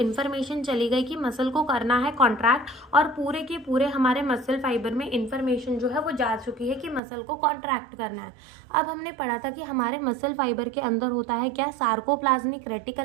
चली गई कि मसल को करना है कॉन्ट्रैक्ट, और पूरे के पूरे हमारे मसल फाइबर में इन्फॉर्मेशन जो है वो जा चुकी है कि मसल को कॉन्ट्रैक्ट करना है। अब हमने पढ़ा था कि हमारे मसल फाइबर के अंदर होता है क्या, सार्कोप्लाज्मिक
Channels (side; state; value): left; drops out; at 7.0 s